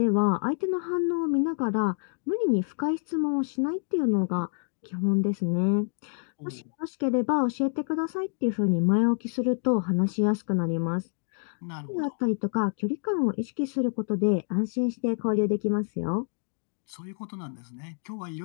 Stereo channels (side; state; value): right; silent; 57 dB below the other